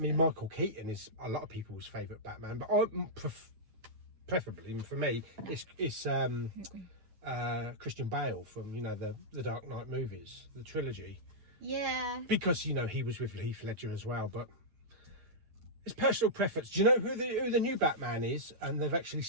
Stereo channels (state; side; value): late; left; 9.4 ms